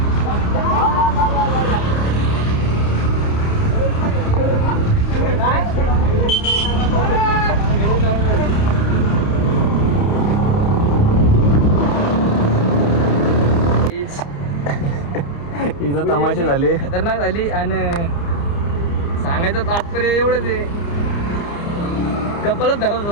तमाशे झाले खतरनाक झाली. आणि सांगायचं तात्पर्य एवढंच आहे कपलच धरत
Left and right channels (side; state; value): right; late; 29 ms